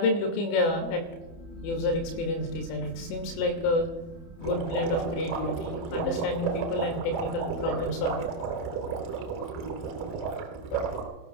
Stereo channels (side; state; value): right; late; 30 ms